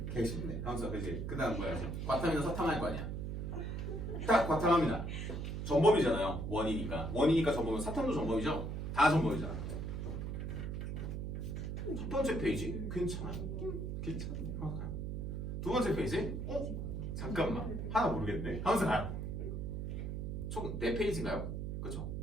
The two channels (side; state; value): right; noise; hum, 3 dB below the sound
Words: 개 쉽네. 하면서 그지. 그다음 뭐야? 과탐이나 서탐할 거 아니야. 딱 과탐합니다. 전범이잖아요. 원이니까 전범은 사탐도 전범이죠. 다 전범이잖아. 첫 번째 페이지 괜찮아요. 괜찮네. 두 번째 페이지 잠깐만 하나 모르겠네. 하면서 가요. 총 4페이지인가요? 그렇죠?